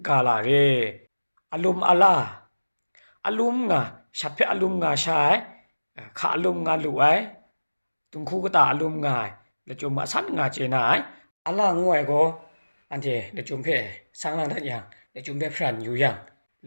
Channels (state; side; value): inverted; both; correlation -1.00